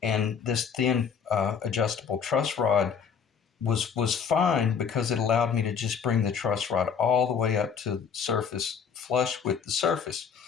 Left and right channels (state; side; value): quieter; right; 6.8 dB